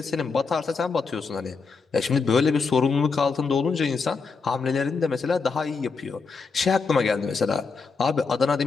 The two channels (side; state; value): right; quieter; 4.8 dB